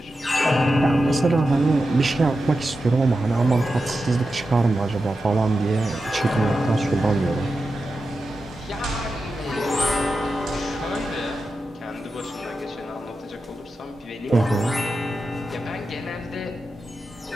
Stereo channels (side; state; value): both; normal; correlation 0.91